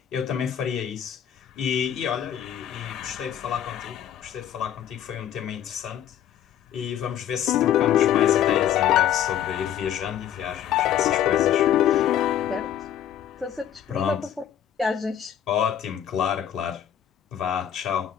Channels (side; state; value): right; quieter; 10.3 dB